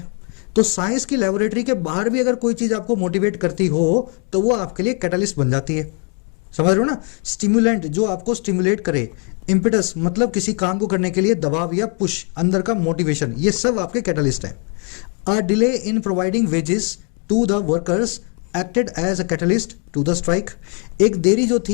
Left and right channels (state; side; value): quieter; right; 37.8 dB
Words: तो साइंस की लेबोरेटरी के बाहर भी अगर कोई चीज़ आपको मोटिवेट करती हो तो वो आपके लिए कैटालिस्ट बन जाती है, समझ रहे हो ना। स्टिमुलेंट जो आपको स्टिमुलेट करे, इम्पिटस मतलब किसी काम को करने के लिए दबाव या पुश, अंदर का मोटिवेशन, ये सब आपके कैटालिस्ट हैं। A delay in providing wages to the workers acted as a catalyst to the strike. एक देरी जो